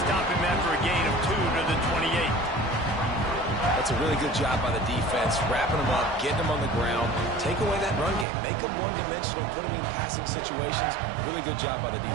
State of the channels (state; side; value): drops out; left; at 8.2 s